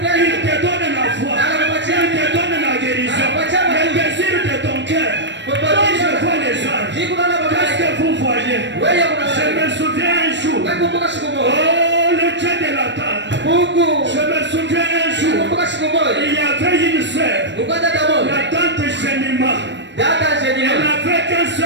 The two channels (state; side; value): late; left; 0.52 ms